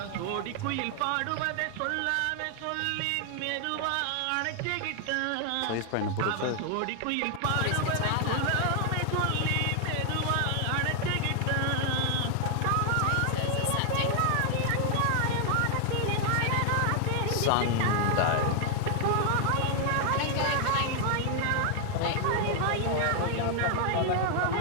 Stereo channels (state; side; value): different; both; correlation 0.00